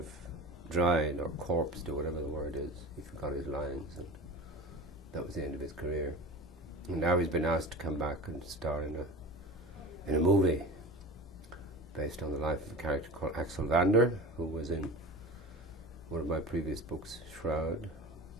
of dried or corpsed or whatever the word is. He forgot his lines, and that was the end of his career. And now he's been asked to come back and star in a movie based on the life of a character called Axel Vander, who was in one of my previous books, Shroud.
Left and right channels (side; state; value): both; normal; correlation 0.33